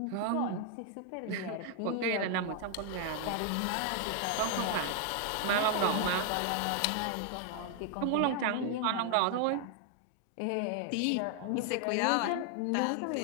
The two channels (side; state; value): both; different; correlation 0.00